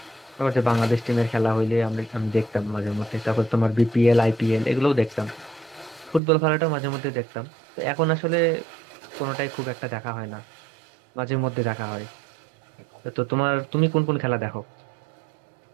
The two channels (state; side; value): drops out; left; at 6.2 s